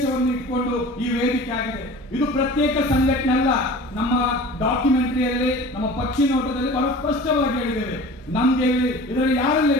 ಇಟ್ಕೊಂಡು ಈ ವೇದಿಕೆ ಆಗಿದೆ. ಇದು ಪ್ರತ್ಯೇಕ ಸಂಘಟನೆ ಅಲ್ಲ. ನಮ್ಮ ಡಾಕ್ಯುಮೆಂಟರಿಯಲ್ಲಿ, ನಮ್ಮ ಪಕ್ಷಿ ನೋಟದಲ್ಲಿ ಬಹಳ ಸ್ಪಷ್ಟವಾಗಿ ಹೇಳಿದ್ದೇವೆ. ನಮ್ಗೆ ಇದರಲ್ಲಿ ಯಾರೆಲ್ಲ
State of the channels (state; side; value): normal; both; correlation 0.40